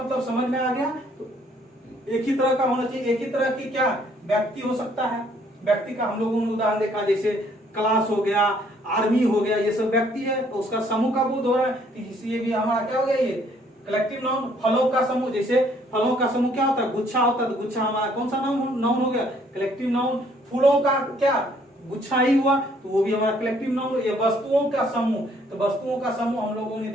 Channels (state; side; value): normal; both; correlation 0.64